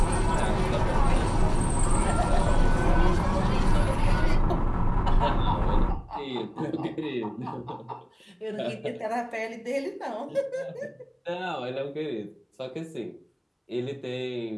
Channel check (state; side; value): identical; both; correlation 1.00